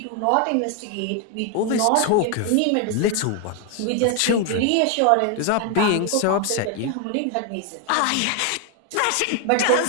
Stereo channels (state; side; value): different; both; correlation 0.01